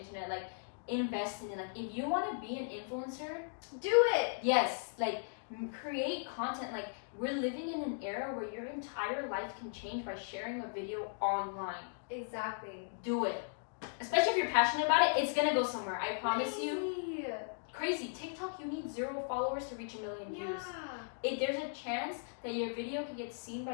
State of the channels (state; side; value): silent; right; digital silence